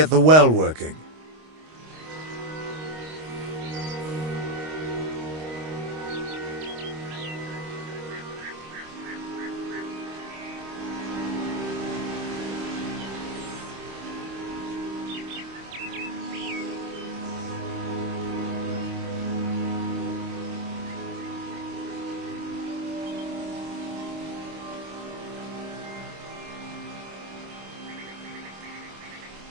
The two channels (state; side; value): late; left; 26 ms